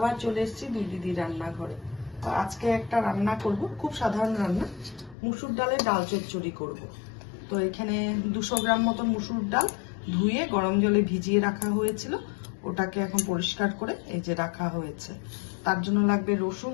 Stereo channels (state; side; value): drops out; right; at 5.2 s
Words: চলে এসেছি দুই দিদি রান্নাঘরে। তো আজকে একটা রান্না করব, খুব সাধারণ রান্না। মুসুর ডালের ডাল চচ্চড়ি করব। তো এখানে 200 গ্রাম মতন মুসুর ডাল ধুয়ে গরম জলে ভিজিয়ে রাখা হয়েছিল, ওটাকে এখন পরিষ্কার করে এই যে রাখা হয়েছে। তার জন্য লাগবে রসুন,